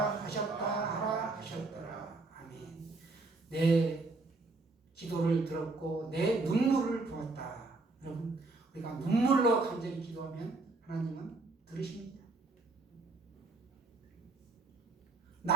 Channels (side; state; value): left; quieter; 3.4 dB